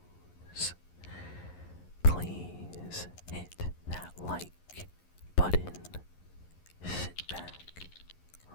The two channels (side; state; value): right; late; 11 ms